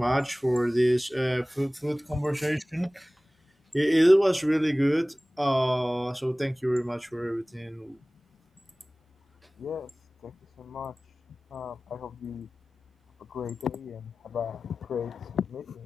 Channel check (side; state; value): both; normal; correlation 0.98